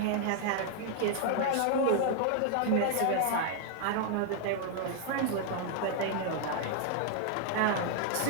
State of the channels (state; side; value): different; both; correlation 0.00